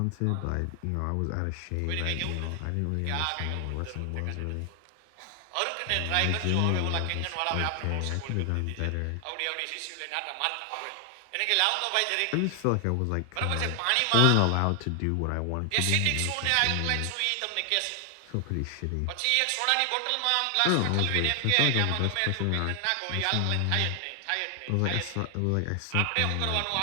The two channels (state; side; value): different; both; correlation 0.00